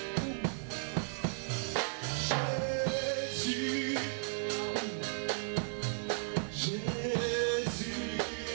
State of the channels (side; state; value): left; silent; digital silence